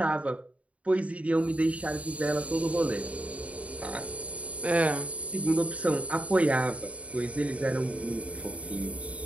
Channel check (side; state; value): left; late; 0.066 ms